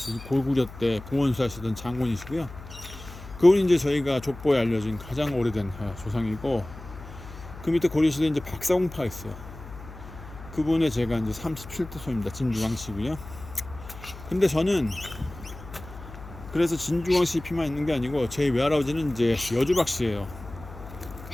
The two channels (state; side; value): noise; left; hum, 15 dB below the sound